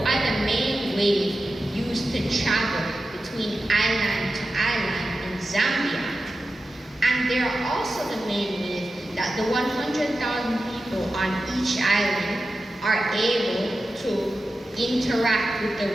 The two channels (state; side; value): normal; both; correlation 0.92